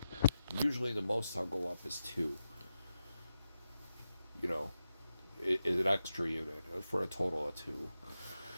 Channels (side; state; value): both; inverted; correlation -0.88